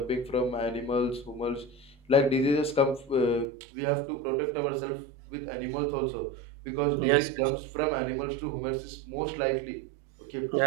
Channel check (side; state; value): left; drops out; at 3.5 s